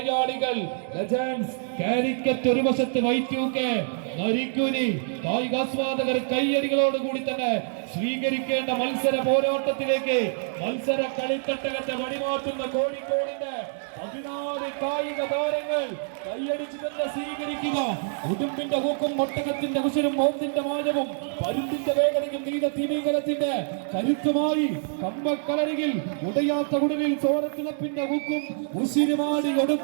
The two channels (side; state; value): left; silent; digital silence